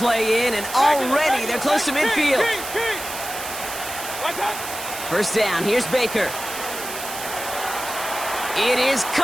in, and already they're close to midfield. 1st down, here's Baker. It is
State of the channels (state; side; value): noise; right; hiss, 9 dB below the sound